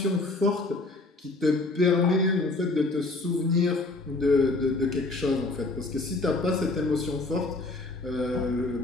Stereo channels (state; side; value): quieter; right; 3.1 dB